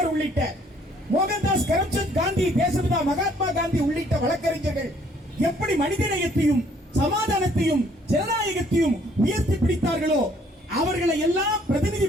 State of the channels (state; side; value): normal; both; correlation 0.62